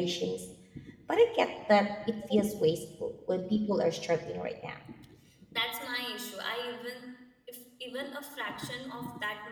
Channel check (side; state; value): both; identical; correlation 1.00